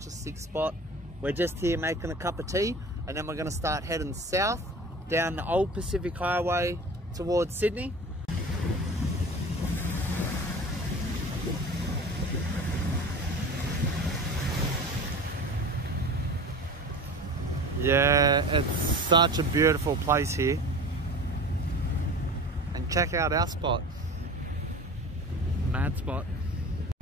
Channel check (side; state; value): both; normal; correlation 0.37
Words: a sick spot. We're just here making a cup of tea and then we're going to start heading south down the old Pacific Highway towards Sydney. Yeah, it's such a beautiful place here. And check out our spot. Mad spot.